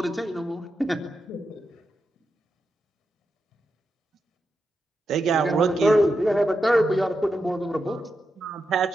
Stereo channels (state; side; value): normal; both; correlation 0.87